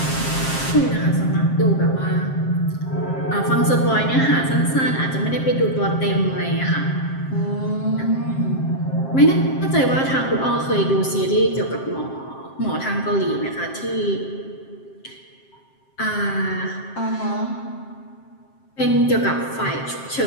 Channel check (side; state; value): right; late; 7.6 ms